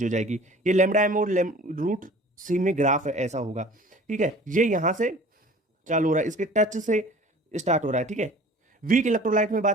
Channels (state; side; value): normal; both; correlation 0.46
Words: हो जाएगी। ये लेमडा एम और रूट सी में ग्राफ है ऐसा होगा, ठीक है। ये यहां से चालू हो रहा है, इसके टच से स्टार्ट हो रहा है, ठीक है। वीक इलेक्ट्रोलाइट में